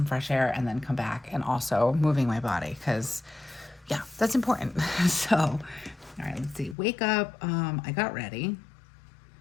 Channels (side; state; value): right; drops out; at 6.8 s